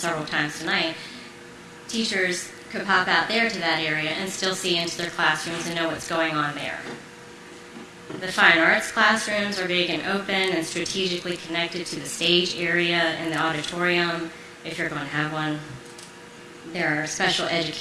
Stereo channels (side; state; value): both; identical; correlation 1.00